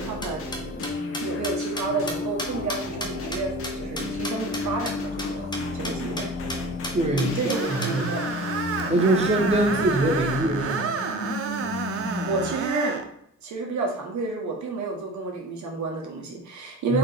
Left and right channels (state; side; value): normal; both; correlation 0.37